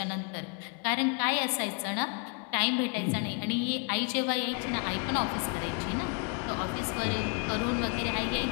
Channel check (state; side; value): quieter; right; 36.4 dB